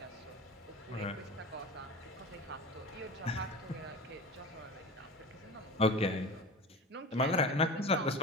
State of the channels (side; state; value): both; normal; correlation 0.33